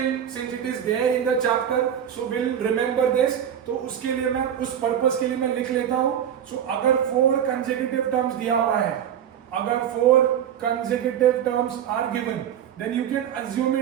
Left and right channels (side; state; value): left; quieter; 9.4 dB